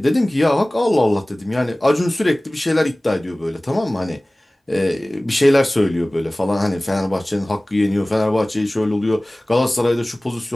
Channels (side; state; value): both; normal; correlation 0.98